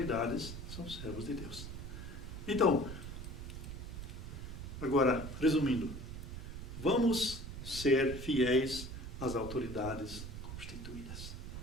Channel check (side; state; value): right; noise; rumble, 8 dB below the sound